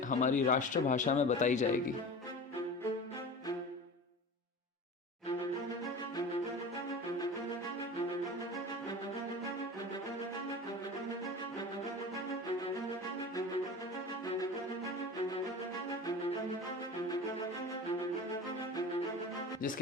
हमारी राष्ट्रभाषा में बताई जाएगी।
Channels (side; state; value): both; normal; correlation 0.34